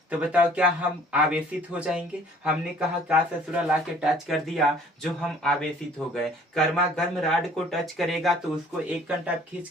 तो बताओ क्या हम आवेशित हो जाएंगे। हमने कहा का ससुरा ला के टच कर दिया जो हम आवेशित हो गए। गर्मा गर्म राड को टच करेगा तो उसको एक घंटा खींच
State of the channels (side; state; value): both; normal; correlation 0.54